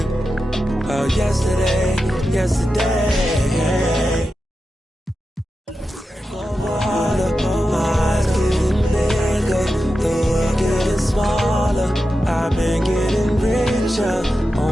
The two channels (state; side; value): normal; both; correlation 0.91